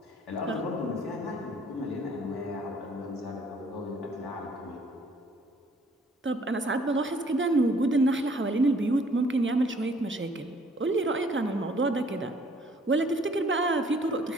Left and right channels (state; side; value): normal; both; correlation 0.59